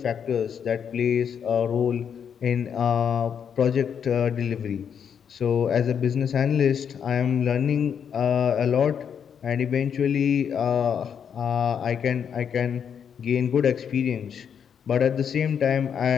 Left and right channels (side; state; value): right; quieter; 7.7 dB